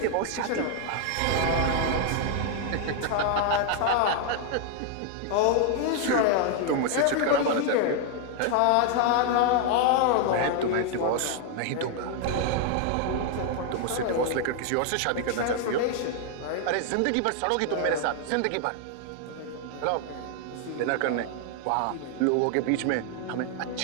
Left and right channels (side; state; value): both; different; correlation 0.00